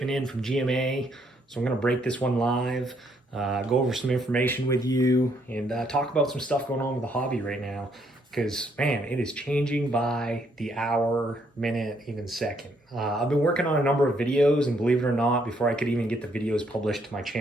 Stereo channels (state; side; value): normal; both; correlation 0.71